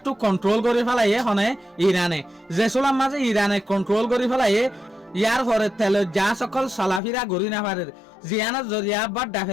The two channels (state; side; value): drops out; right; at 7.0 s